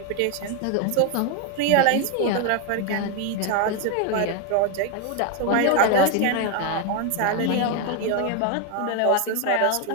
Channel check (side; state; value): both; different; correlation 0.01